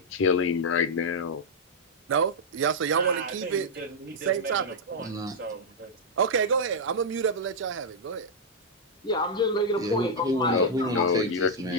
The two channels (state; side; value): normal; both; correlation -0.04